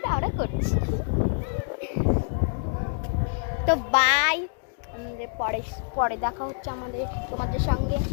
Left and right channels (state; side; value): silent; right; digital silence